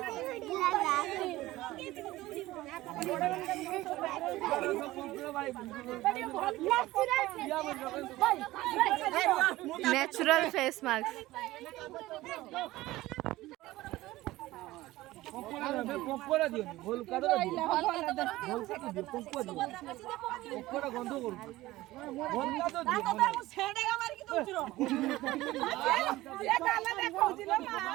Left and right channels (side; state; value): left; quieter; 17.6 dB